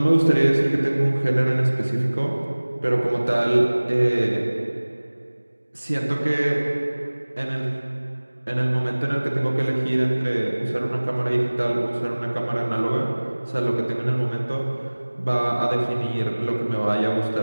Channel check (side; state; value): both; inverted; correlation -1.00